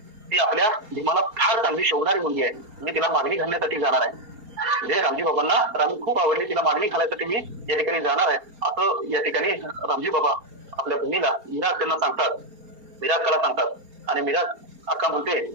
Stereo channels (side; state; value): left; late; 4.3 ms